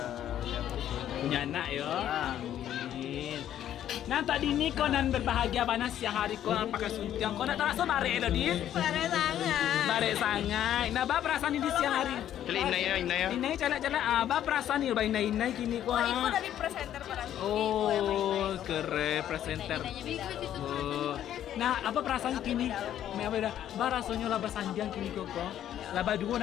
yang Punya anak ya. Amin. Nah tadi ini kau nan berbahagia panas siang hari kau pakai suntiang kau nak terasa bare lo di? Pada sangat. Bare sangai. Nah bah perasaan ini di siang hari. Kali inai ya. Inai calak-calak bah perasaan ini bah inai kini kau. Oh, itu dari presenter para Oh keren presenter. Oh. Nah apa perasaan kini? Me apa dah? Bah rasanya lah sanjang kini kau. Lah dua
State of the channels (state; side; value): quieter; right; 11.1 dB